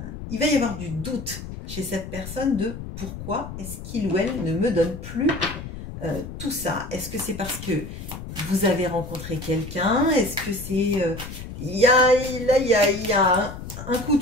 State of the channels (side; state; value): left; noise; rumble, 10 dB below the sound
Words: il va y avoir du doute chez cette personne de pourquoi est-ce qu'il ou elle ne me donne plus tout ça. Est-ce que c'est parce que vous avez rencontré quelqu'un? Est-ce que c'est... il y a un coup